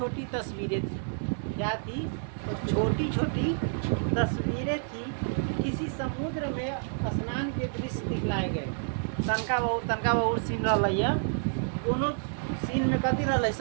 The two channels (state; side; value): silent; left; digital silence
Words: तस्वीरें थी। क्या थी? छोटी छोटी तस्वीरें थी। किसी समुद्र में स्नान के दृश्य दिखलाए गए। तनका बहुत सीन रहा। दोनों सीन में कथी रहा?